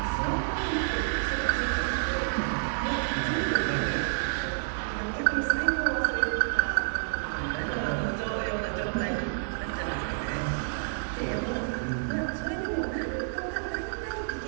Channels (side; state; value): left; silent; 58 dB below the other